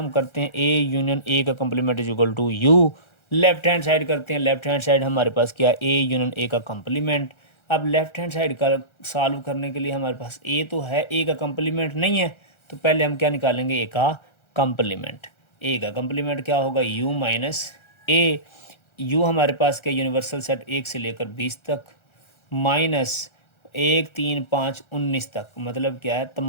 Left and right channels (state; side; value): late; right; 1.3 ms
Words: करते हैं a यूनियन a का complement is equal to u, left hand side करते हैं। लेफ्ट हैंड साइड हमारे पास क्या, a यूनियन a का कंप्लीमेंट। अब लेफ्ट हैंड साइड का सॉल्व करने के लिए हमारे पास a तो है, a का कंप्लीमेंट नहीं है, तो पहले हम क्या निकालेंगे, a का कंप्लीमेंट। a का कंप्लीमेंट क्या होगा, u माइनस a, u हमारे पास क्या यूनिवर्सल सेट 1 से लेकर 20 तक माइनस 1 3 5 19 तक, मतलब क्या है